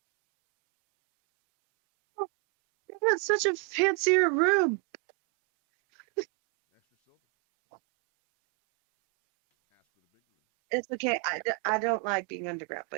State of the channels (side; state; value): left; quieter; 38.4 dB